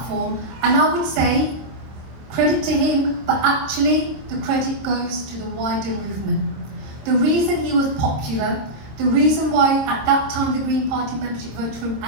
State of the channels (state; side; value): late; left; 26 ms